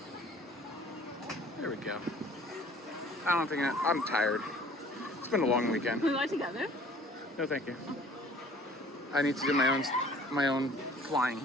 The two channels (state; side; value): normal; both; correlation 0.52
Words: There we go. I don't think I'm tired. It's been a long weekend. We go together? No, thank you. I need to do my own flying.